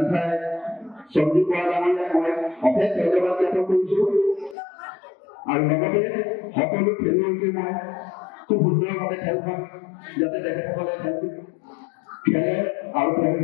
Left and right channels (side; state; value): right; drops out; at 4.5 s